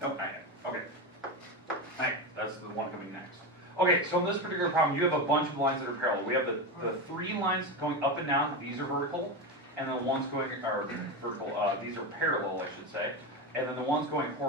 Nope, not yet. Okay. Alright, that's the one coming next. Okay, so in this particular problem, you have a bunch of lines that are parallel. We have the 3 lines going up and down, these are vertical, and the ones going are vertical, these are parallel, I should say, and then the ones going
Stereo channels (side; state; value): both; normal; correlation 0.17